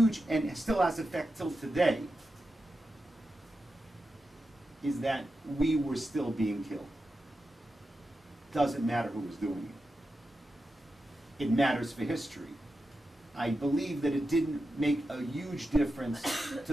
and still has effect till today, is that we were still being killed. Doesn't matter who was doing it. It matters for history. I believe that it didn't make a huge difference to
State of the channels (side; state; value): both; normal; correlation 0.90